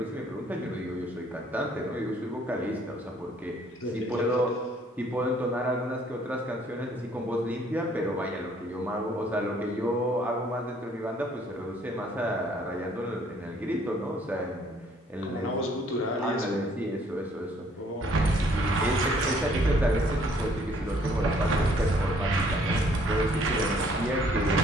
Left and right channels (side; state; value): both; normal; correlation 0.62